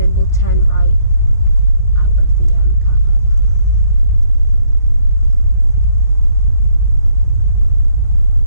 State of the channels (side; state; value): both; inverted; correlation -0.70